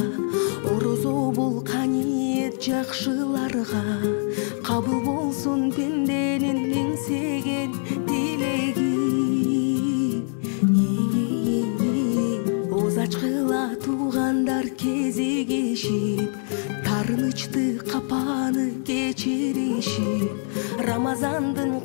орозо бул каниет жакшыларга, кабыл болсун пенденин эңсеген тилеги. Ачкыла туугандар кезигишип, тарынычты капаны кечиришип, Рамазандын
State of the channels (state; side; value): silent; right; 62 dB below the other